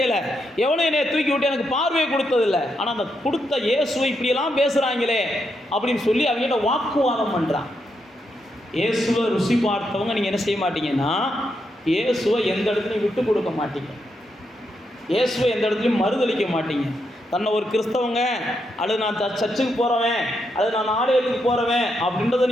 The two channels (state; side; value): normal; both; correlation 0.81